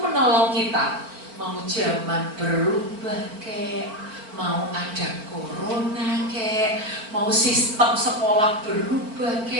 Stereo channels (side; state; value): left; late; 4.5 ms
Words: kita. Mau zaman berubah kek, mau ada corona kek, mau sistem sekolah berubah